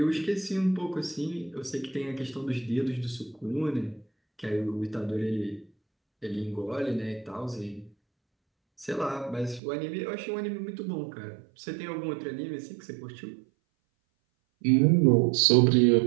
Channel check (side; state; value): left; drops out; at 9.6 s